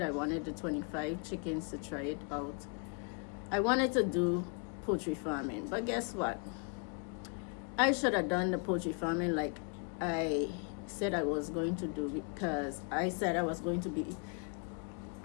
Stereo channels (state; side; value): quieter; right; 39.0 dB